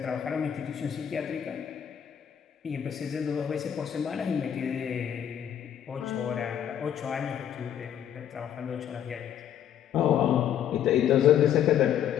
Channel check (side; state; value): right; quieter; 9.6 dB